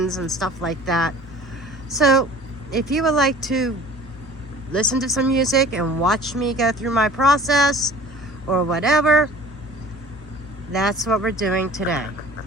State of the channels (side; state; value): both; normal; correlation 0.46